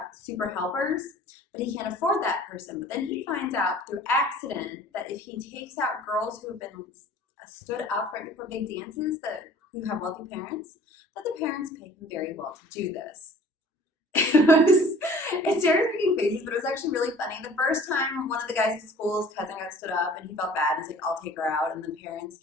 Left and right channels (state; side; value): normal; both; correlation 0.49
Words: super helpers, but he can't afford that person. But then he finds out through accident that if he takes out girls who have been stood up right before big dances who have wealthy parents, that the parents pay him very well to do this. It's Sarah's making faces, but it was actually really funny. The first time one of the guys at school's cousin got stood up and he felt bad, he's like, I'll take her out. And the parents